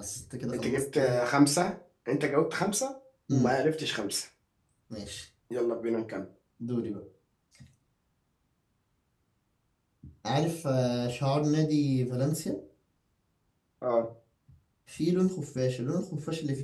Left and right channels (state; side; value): identical; both; correlation 1.00